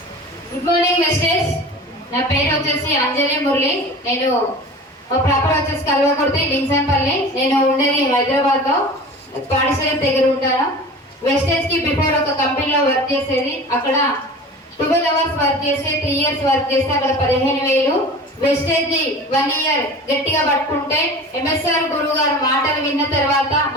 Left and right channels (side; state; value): both; normal; correlation 0.37